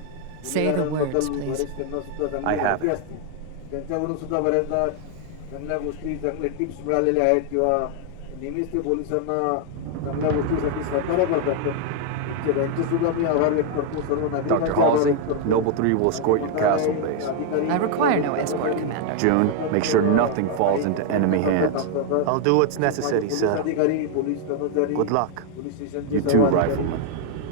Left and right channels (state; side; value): different; both; correlation 0.00